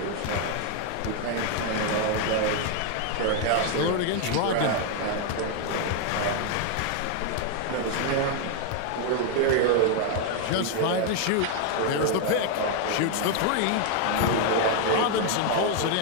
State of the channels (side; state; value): both; different; correlation 0.00